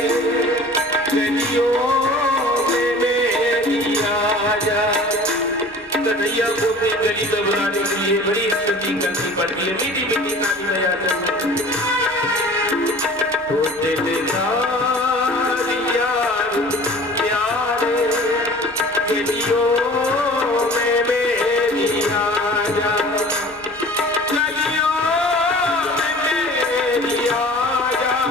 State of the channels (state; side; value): normal; both; correlation 0.44